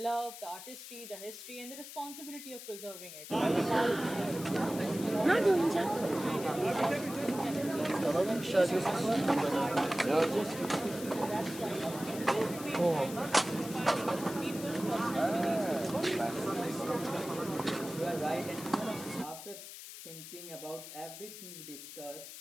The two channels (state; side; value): noise; left; hiss, 12 dB below the sound